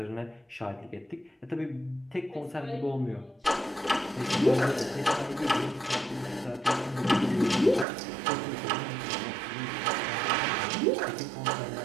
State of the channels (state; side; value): drops out; left; at 7.9 s